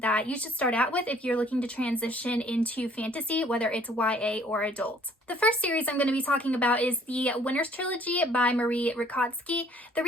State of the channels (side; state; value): both; normal; correlation 0.58